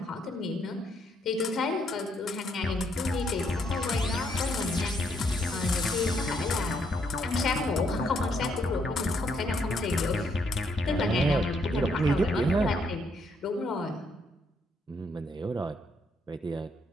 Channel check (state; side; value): normal; both; correlation 0.73